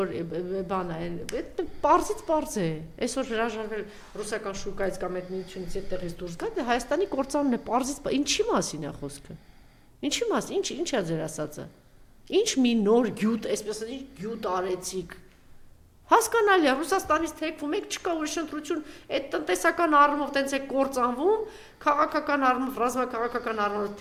բան է, պարզից պարզ է, այսօր հրաժարվել ռուսական շուկայից կամ այդ միությունից այդտեղից դուրս գա, դե Հայաստանի կործանումն է, պարզից ինչի մասին է խոսքը։ Ինչի մասին, ինչ է ձեր ասածը։ Ինչ մի նոր գյուտ, այսպես ասած, գյուտ արեցիք։ Հասկանալի է, Ռուսաստանից թեքվում եք, չկա ուրիշ ընտրություն, այդ տնտեսական առումով տենց է կործանվում, քաղաքական առումով, ռազմաքաղաքական առումով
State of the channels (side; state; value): both; identical; correlation 1.00